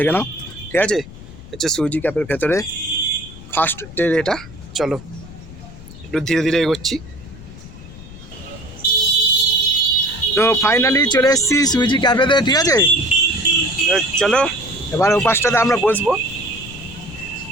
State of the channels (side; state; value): left; noise; rumble, 16 dB below the sound